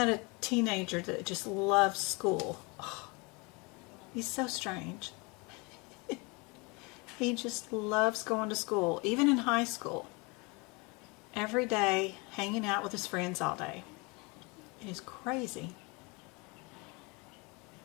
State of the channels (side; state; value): right; quieter; 28.3 dB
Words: a teenager that just loves school. Oh, he's so strange. He just loves going to school, even in high school. Every day, hanging out with his friends all day. It is crazy.